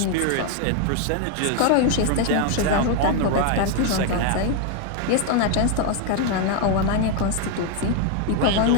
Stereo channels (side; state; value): both; different; correlation 0.01